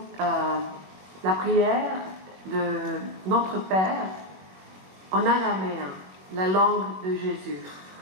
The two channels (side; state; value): left; late; 21 ms